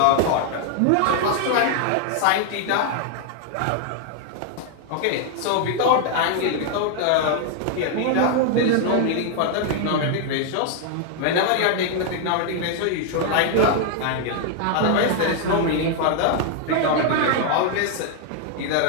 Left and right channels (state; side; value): different; both; correlation 0.00